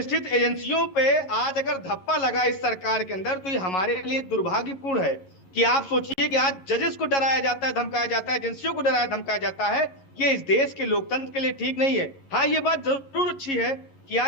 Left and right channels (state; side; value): late; right; 11 ms